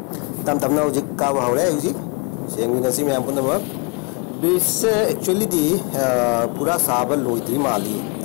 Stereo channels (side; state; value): right; quieter; 33.6 dB